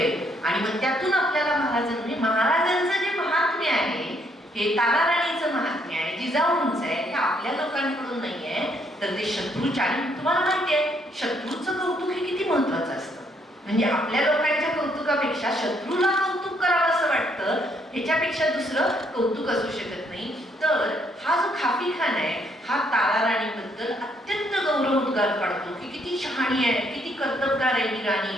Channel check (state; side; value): normal; both; correlation 0.70